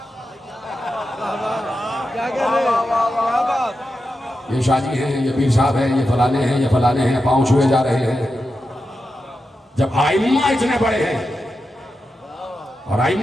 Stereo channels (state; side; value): normal; both; correlation 0.89